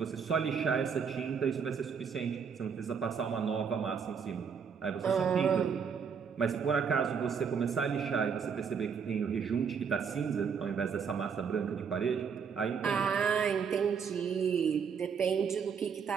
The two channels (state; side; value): quieter; left; 6.5 dB